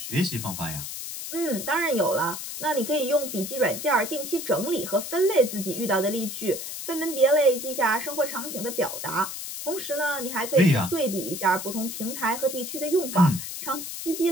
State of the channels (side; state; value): left; noise; hiss, 7 dB below the sound